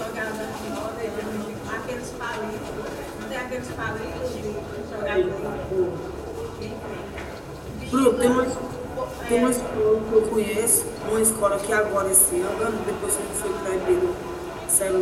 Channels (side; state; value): both; identical; correlation 1.00